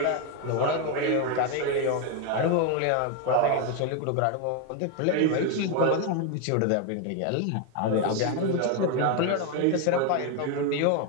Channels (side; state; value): both; different; correlation 0.01